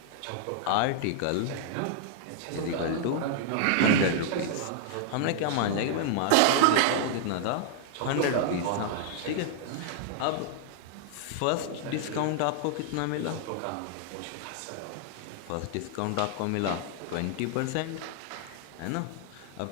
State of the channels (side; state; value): both; different; correlation -0.01